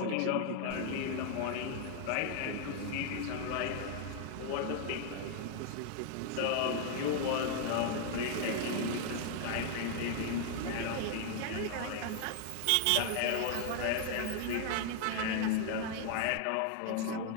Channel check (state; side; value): different; both; correlation 0.00